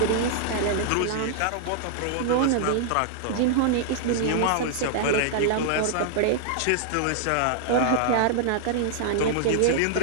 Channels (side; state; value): both; different; correlation -0.01